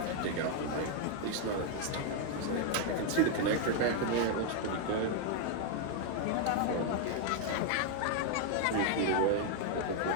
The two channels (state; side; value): different; both; correlation 0.00